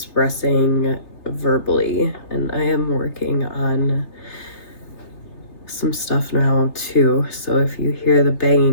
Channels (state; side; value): late; right; 3.3 ms